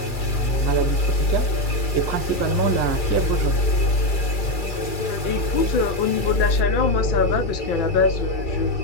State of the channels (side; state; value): right; late; 2.3 ms